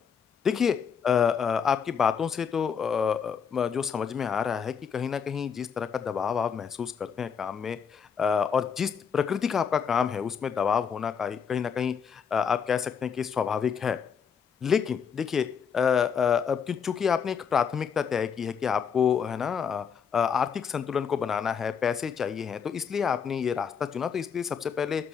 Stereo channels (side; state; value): right; quieter; 7.0 dB